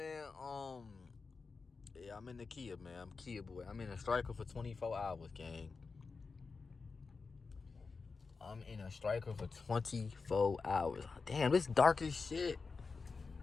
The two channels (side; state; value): right; quieter; 4.5 dB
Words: Yeah, I'm in the Kia, man. I'm Kia boy. I'm in a striker for 24 hours, gang. I'm in a striker for 24 hours. Damn, it's dark as shit.